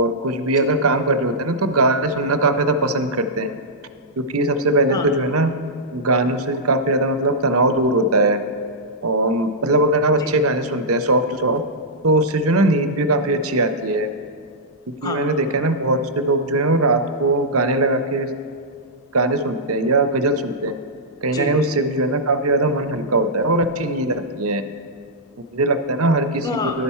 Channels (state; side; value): normal; both; correlation -0.11